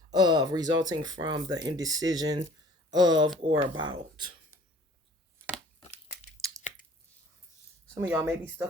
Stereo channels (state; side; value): normal; both; correlation 0.50